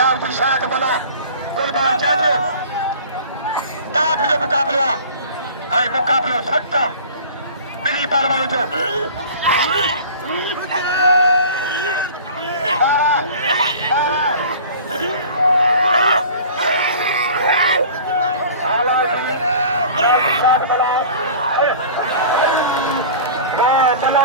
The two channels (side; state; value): both; inverted; correlation -0.42